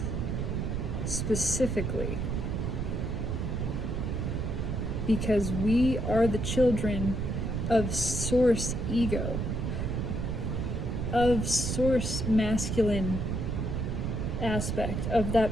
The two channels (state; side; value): noise; right; rumble, 1 dB below the sound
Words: specifically. Because we are the children of Source ego, of Source masculine aspect, of